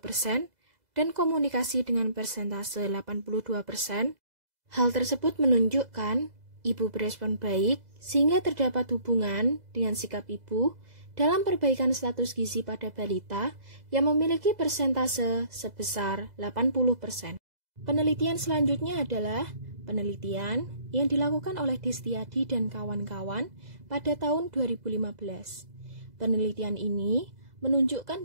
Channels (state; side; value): late; left; 2.0 ms